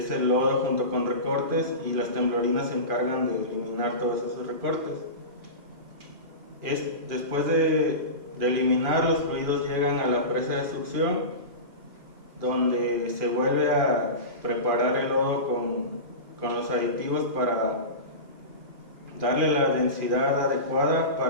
el lodo junto con recortes, y las temblorinas se encargan de eliminar todos esos recortes. Después de eliminar, los fluidos llegan a la presa de succión, donde se vuelve a preparar el lodo con los aditivos darle la densidad adecuada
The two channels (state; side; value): late; left; 2.4 ms